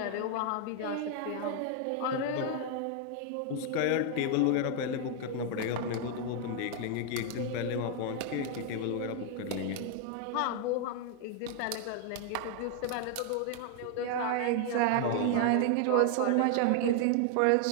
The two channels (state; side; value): different; both; correlation 0.00